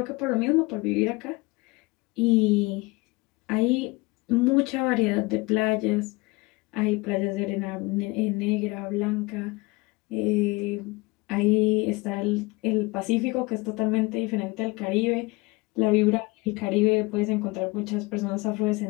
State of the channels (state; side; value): quieter; right; 24.2 dB